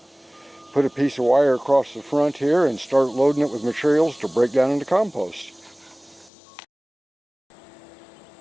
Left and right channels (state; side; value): drops out; right; at 6.3 s